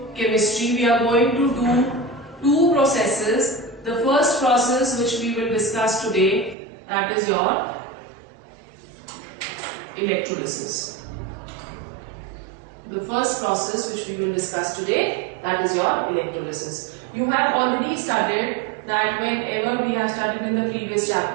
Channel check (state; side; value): drops out; left; at 6.6 s